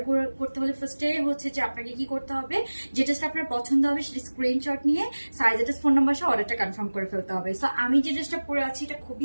করতে হলে ফার্স্টে হচ্ছে যে আপনাকে কি করতে হবে, যেটা আপনার পছন্দ হবে সেটা স্ক্রিনশট নিয়ে সাইজ অ্যাড্রেস ফোন নাম্বার সহ অর্ডারটা কনফার্ম করে ফেলতে হবে। সো আমি যে ড্রেসটা পরে আছি এটা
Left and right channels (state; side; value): inverted; both; correlation -1.00